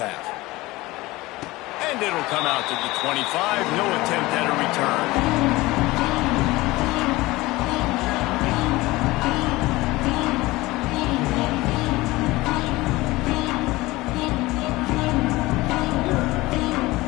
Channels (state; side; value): quieter; right; 20.0 dB